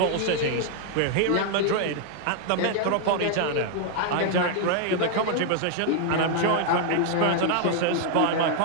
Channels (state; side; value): different; both; correlation 0.00